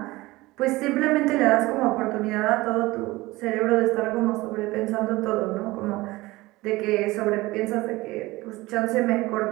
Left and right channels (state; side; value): quieter; left; 20.1 dB